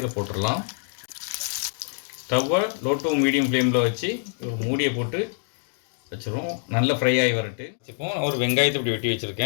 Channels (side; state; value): right; silent; digital silence